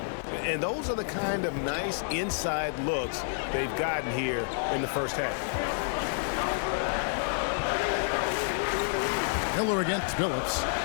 And those are the kind of nice inside looks they've gotten here in the first half. Miller against Phillips.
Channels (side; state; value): right; silent; digital silence